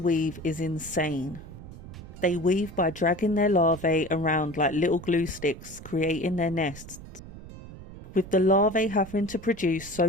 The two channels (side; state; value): right; noise; rumble, 15 dB below the sound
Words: is insane. They weave by dragging their larvae around like little glue sticks, creating their nests. With the larvae having to produce